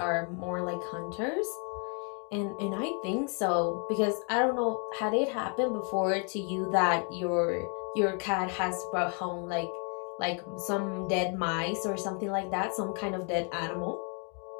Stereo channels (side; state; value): right; quieter; 39.1 dB